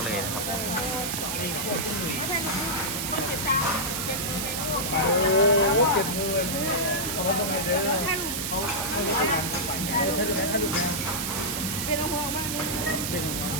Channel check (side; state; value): right; noise; hiss, 2 dB below the sound